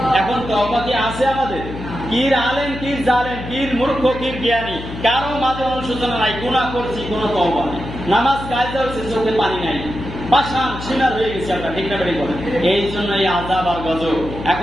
এখন তওবা কি আছে আমাদের? কির আলেম, কির জালেম, কির মূর্খ, কির জ্ঞানী, কারো মাঝে অনুশোচনা নাই। গুনাহ করছি, কোনো তওবা নাই। নামাজ কায়দা হচ্ছে, চোখে পানি নাই, পাষাণ সিনার হয়ে গেছে আমরা, ঠিক না বেঠিক বলেন? এই জন্য এই আযাব আর গজব।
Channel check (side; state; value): left; noise; hum, 10 dB below the sound